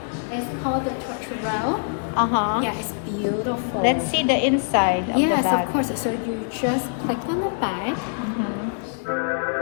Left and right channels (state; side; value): silent; right; 63 dB below the other